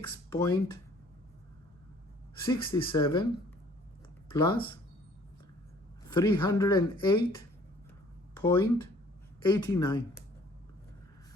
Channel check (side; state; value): both; normal; correlation 0.56